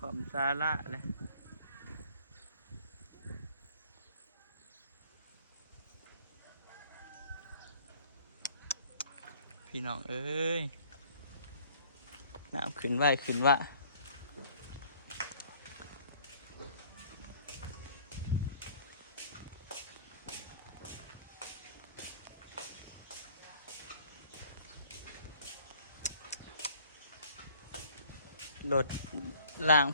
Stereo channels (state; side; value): inverted; both; correlation -0.55